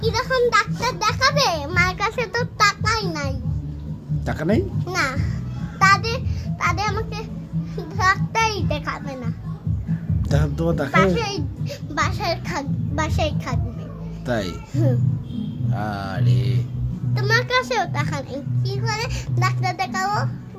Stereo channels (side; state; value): both; identical; correlation 1.00